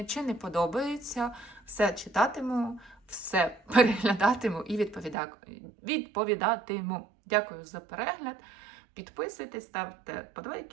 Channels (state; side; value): drops out; left; at 5.2 s